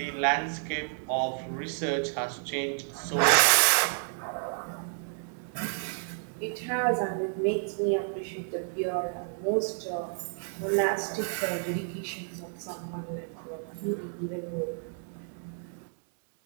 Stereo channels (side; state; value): left; silent; 55 dB below the other